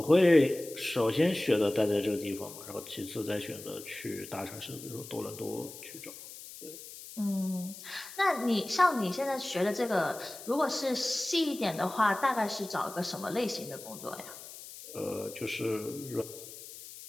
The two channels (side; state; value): left; noise; hiss, 14 dB below the sound